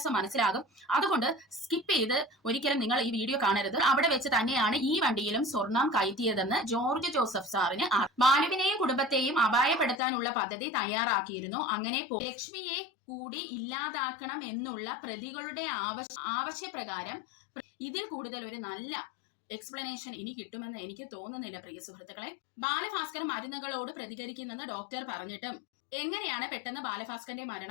മനസ്സിലാകും. അതുകൊണ്ട് സ്കിപ്പ് ചെയ്ത് ഒരിക്കലും നിങ്ങൾ ഈ വീഡിയോ കാണരുത്. അവിടെ വെച്ച് തന്നെയാണ് ഈ വണ്ടിയിലും സ്വർണം കയറ്റിയതെന്ന് ജോർജ് ജോസഫ് സാറിന് ബാലുവിനെയും കുടുംബത്തെയും അപായപ്പെടുത്താനുള്ള പദ്ധതി തയ്യാറാക്കിയിരുന്നു. അങ്ങനെ ലക്ഷ്മിയെ കൂടി ഇല്ലാതാക്കണം എന്നുള്ള പ്രതികളുടെ ആവശ്യപ്രകാരം ഇതിൽ കൂടുതൽ ഒരു നല്ല എക്സ്പ്ലനേഷൻ ഇനി കിട്ടുമെന്ന് എനിക്ക് തോന്നുന്നില്ല പ്രിയ സുഹൃത്തുക്കളെ. ബാലഭാസ്കർ മരുന്നുകളോട് പ്രതികരിക്കുന്നെന്ന് ഡോക്ടർ പറഞ്ഞിട്ടും എങ്ങനെയാണ് പെട്ടെന്ന് ബാലഭാസ്കറിന്റെ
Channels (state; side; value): drops out; right; at 10.0 s